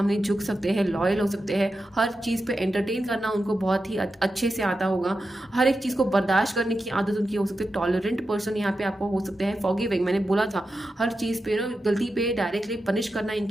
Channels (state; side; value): normal; both; correlation 0.90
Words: झुक सकते हैं, लॉयल हो सकते हैं। हर चीज़ पे एंटरटेन करना उनको बहुत ही अच्छे से आता होगा। हर एक चीज़ को बर्दाश्त करने की आदत उनकी हो सकती है। टॉलरेंट पर्सन यहाँ पे आपको हो सकते हैं। फॉरगिविंग, मैंने बोला था हर चीज़ पे गलती पे डायरेक्टली पनिश करना